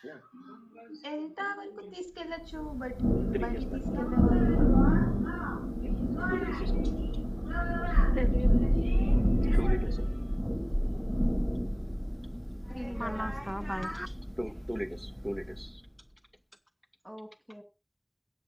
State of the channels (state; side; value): identical; both; correlation 1.00